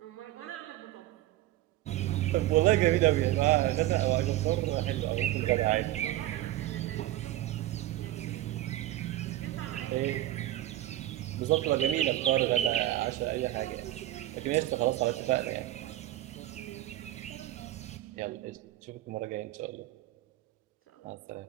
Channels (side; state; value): left; quieter; 14.9 dB